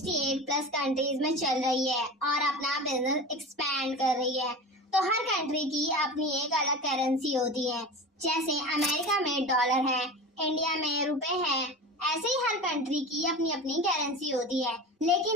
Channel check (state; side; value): normal; both; correlation 0.31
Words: प्लस कंट्रीज में चल रही है और अपना बिजनेस एक्सपैंड कर रही है। तो हर कंट्री की अपनी एक अलग करेंसी होती है। जैसे अमेरिका में डॉलर है, इंडिया में रुपए है, ऐसे ही हर कंट्री की अपनी अपनी करेंसी होती है।